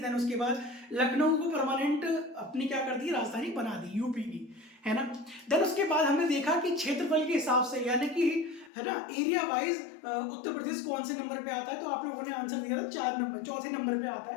उसके बाद लखनऊ को परमानेंट अपनी क्या कर दी, राजधानी बना दी यूपी की, है ना। देन उसके बाद हमने देखा कि क्षेत्रफल के हिसाब से, यानी कि है ना, एरिया वाइज उत्तर प्रदेश कौन से नंबर पे आता है। तो आप लोगों ने आंसर दिया था 4 नंबर, चौथे नंबर पे आता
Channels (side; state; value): right; drops out; at 8.7 s